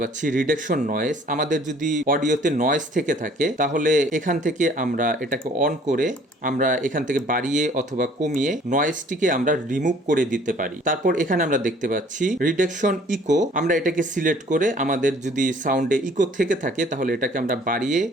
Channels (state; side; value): normal; both; correlation 0.56